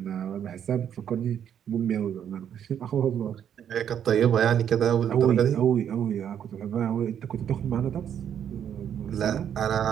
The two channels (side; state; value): left; quieter; 9.1 dB